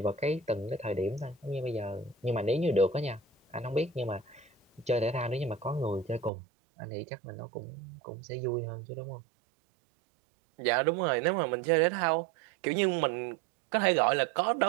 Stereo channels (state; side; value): drops out; left; at 6.3 s